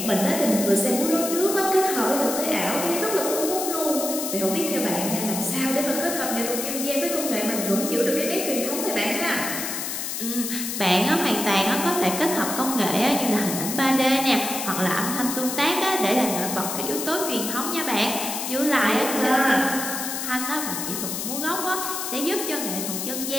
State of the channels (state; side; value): noise; left; hiss, 4 dB below the sound